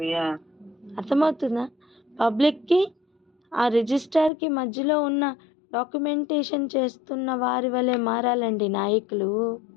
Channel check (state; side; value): drops out; right; at 4.3 s